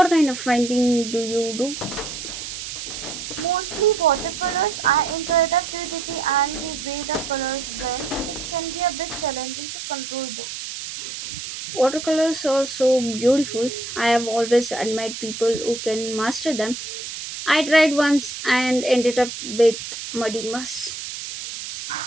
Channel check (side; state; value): right; noise; hiss, 8 dB below the sound